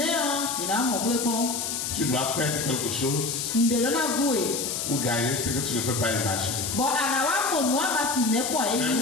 Tu dois perdre quelque chose ou gagner ce que tu ne peux pas imaginer. Mais vous voyez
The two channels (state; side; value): noise; left; hiss, 3 dB below the sound